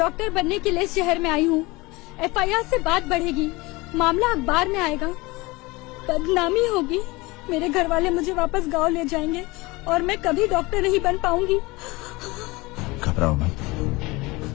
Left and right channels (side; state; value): right; quieter; 23.0 dB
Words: बनने के लिए शहर में आई हूँ। FIR से बात बढ़ेगी, मामला अखबार में आएगा, बदनामी होगी, मेरे घर वाले मुझे वापस गांव ले जाएंगे और मैं कभी डॉक्टर नहीं बन पाऊंगी। घबराओ मत,